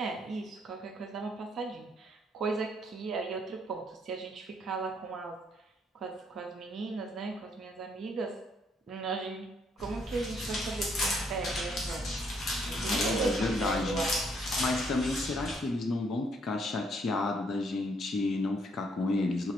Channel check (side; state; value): both; normal; correlation 0.70